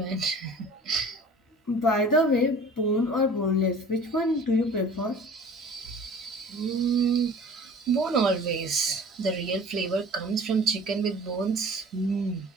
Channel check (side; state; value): both; normal; correlation 0.44